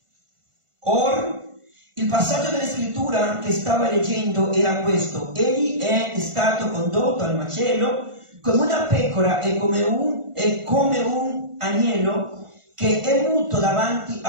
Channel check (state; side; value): late; left; 1.5 ms